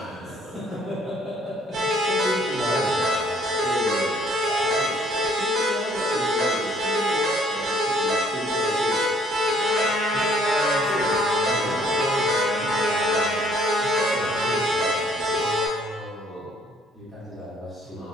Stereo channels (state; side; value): normal; both; correlation 0.61